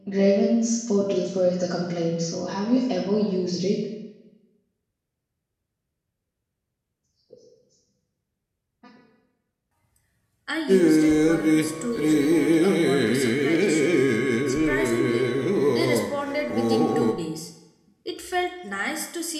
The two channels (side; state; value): both; identical; correlation 1.00